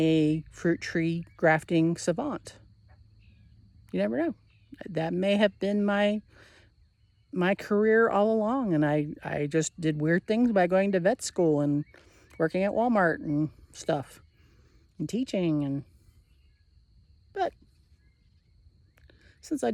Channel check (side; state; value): both; identical; correlation 1.00